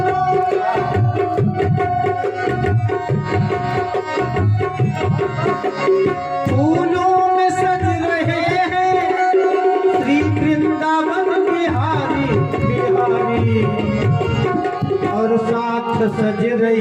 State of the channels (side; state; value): both; identical; correlation 1.00